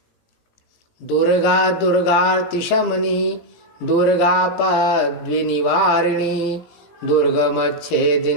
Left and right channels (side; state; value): right; late; 17 ms